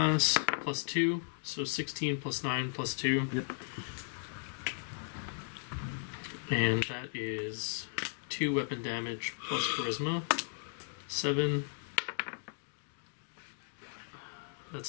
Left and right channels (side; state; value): right; silent; digital silence